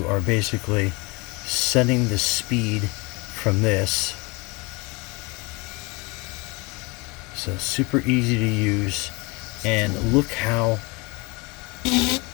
are basically setting the speed from this. So super easy to use, and look how, let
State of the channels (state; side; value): quieter; right; 27.1 dB